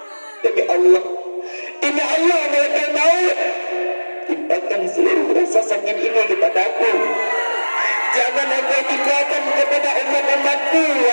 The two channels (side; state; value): both; inverted; correlation -1.00